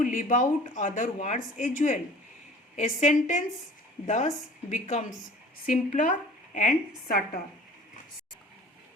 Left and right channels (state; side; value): normal; both; correlation 0.46